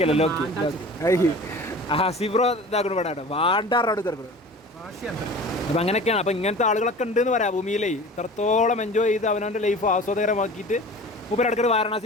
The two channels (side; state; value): both; normal; correlation 0.40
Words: സിബ്രോ ഇതാക്കണം ഇവിടെ വാണ്ടാറോട് ചെറുക്കണം. അപ്പം അങ്ങനെയൊക്കെയാണ്. അപ്പം ഇങ്ങനത്തെ ആളുകളൊക്കെ ഉണ്ടെന്ന് പറയാം ഭൂമിയിലേ. ഇത്രത്തോളം എൻജോയ് ചെയ്ത് അവനവൻ്റെ ലൈഫ് ആസ്വാദകരമാക്കിയിട്ട് മൂപ്പര് ഇടയ്ക്ക്